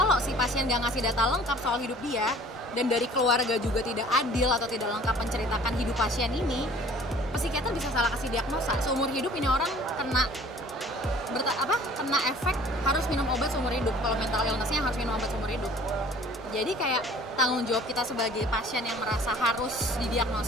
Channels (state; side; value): normal; both; correlation 0.50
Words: si pasien nggak ngasih data lengkap soal hidup dia, dan dari keluarga juga tidak adil atau tidak lengkap menceritakan hidup pasien ini, psikiater bisa salah kasih diagnosa. Seumur hidup ini orang kena efek harus minum obat seumur hidup. Kalau mental illness-nya harus minum obat seumur hidup. Jadi kayak tanggung jawab kita sebagai pasien yang merasa harus